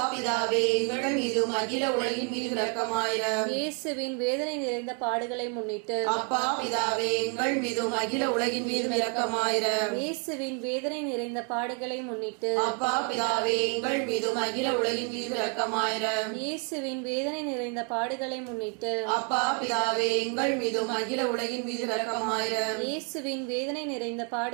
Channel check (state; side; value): quieter; left; 38.0 dB